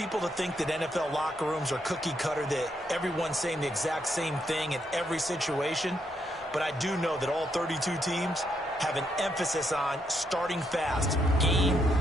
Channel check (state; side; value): normal; both; correlation 0.77